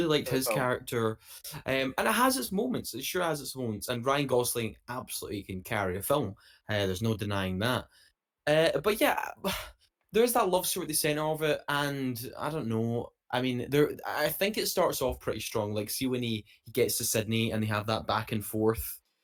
liked for the his film. character, and it has its moments. It sure has its moments. And Ryan Gosling absolutely can carry a film. There's no denying that. But yeah, there's that love story at the center of it, and I don't know. I mean, I think it starts off pretty strong. Like, see when he gets to Sydney and they have that back and forth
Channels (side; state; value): both; identical; correlation 1.00